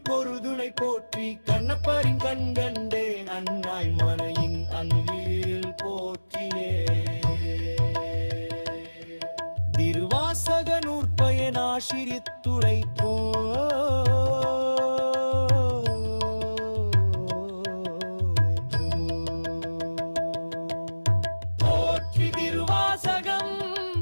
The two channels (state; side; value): inverted; both; correlation -1.00